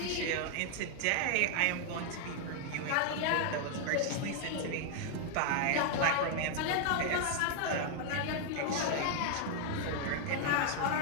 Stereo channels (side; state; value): both; different; correlation 0.00